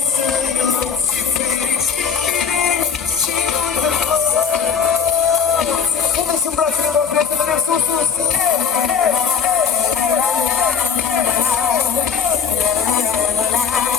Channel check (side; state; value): right; quieter; 6.8 dB